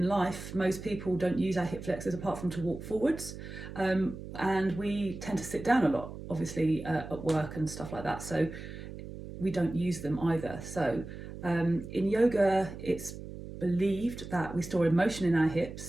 life, most people don't use our hip flexors apart from to walk forwards, and we tend to sit down a lot, obviously at work and stuff like that, so we don't use them either. So in yoga, it's believed that we store emotion in our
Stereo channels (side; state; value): right; noise; hum, 11 dB below the sound